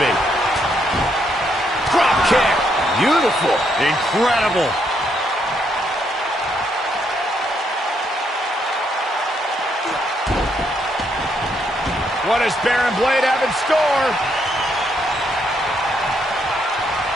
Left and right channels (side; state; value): both; normal; correlation 0.75